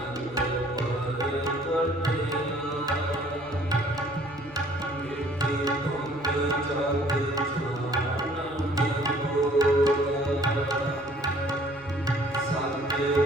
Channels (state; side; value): normal; both; correlation 0.57